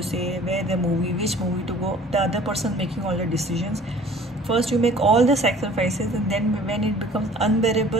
say, where the movie, which movie to go. The other person making all the decisions. First you make all the sacrifices, and then when it becomes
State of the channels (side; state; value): both; normal; correlation 0.50